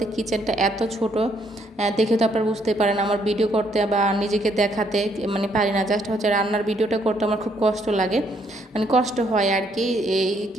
কিচেনটা এত ছোট, দেখে তো আপনারা বুঝতে পারেন আমার ভিডিও করতে বা নিজেকে দেখাতে মানে পারি না, জাস্ট হচ্ছে রান্নার ভিডিওটা করতে আমার খুব কষ্ট লাগে, মানে কষ্ট হয় আর কি, এই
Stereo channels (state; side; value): normal; both; correlation 0.70